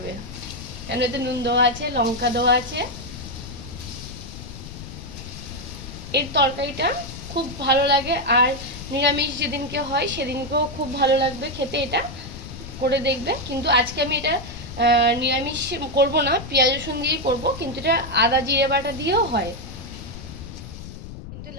কেন এতে নুন দেওয়া আছে, লঙ্কা দেওয়া আছে। এর তরকারিটা খুব ভালো লাগে, আর নিরামিষ যেদিনকে হয় সেদিনকেও খুব ভালো লাগবে খেতে। এটা করে দেখবে। কিন্তু আজকে আমি এটা নিরামিষ করব না, পেঁয়াজ রসুন দিয়েই করব, কিন্তু এটা আদা জিরে বাটা দিয়েও হয়। কিন্তু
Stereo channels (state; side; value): noise; left; rumble, 12 dB below the sound